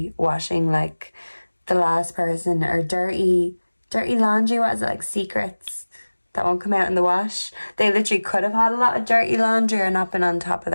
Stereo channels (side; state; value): both; inverted; correlation -1.00